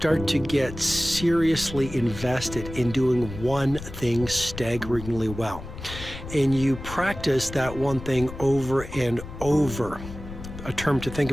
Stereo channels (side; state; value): left; noise; rumble, 11 dB below the sound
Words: to get seriously invested in doing one thing staggeringly well, and you practice that one thing over and over, a term to think